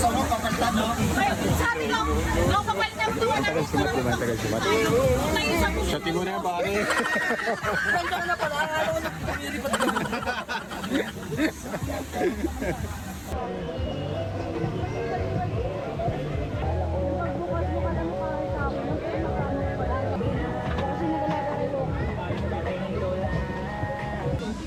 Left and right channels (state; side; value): identical; both; correlation 1.00